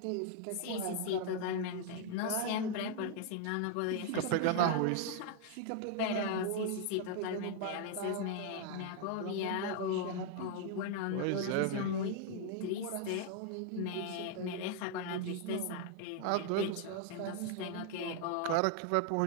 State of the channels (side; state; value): both; different; correlation 0.00